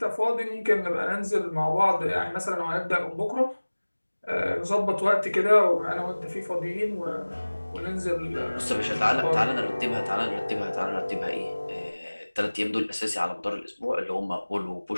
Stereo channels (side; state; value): both; inverted; correlation -1.00